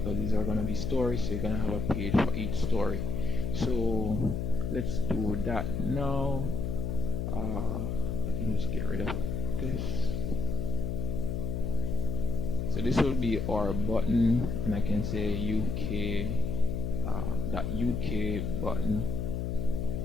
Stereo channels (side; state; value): left; noise; hum, 2 dB below the sound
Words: these are gonna be stories, so you're gonna have a page for each story. So let's do that now. I can just get rid of this. So this will be our button, and I can say UK that UK button.